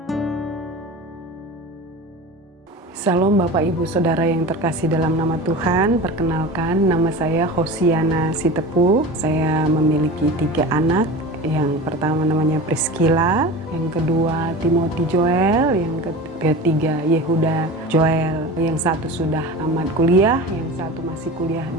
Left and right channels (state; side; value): normal; both; correlation 0.33